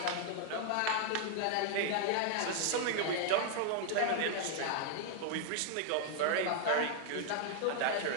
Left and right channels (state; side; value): different; both; correlation 0.00